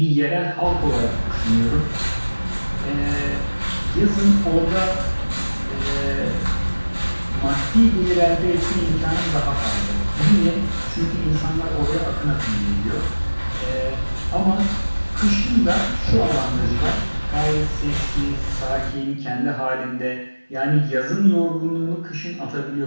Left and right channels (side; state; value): both; inverted; correlation -1.00